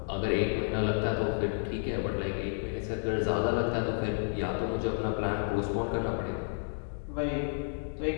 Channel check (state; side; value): silent; right; digital silence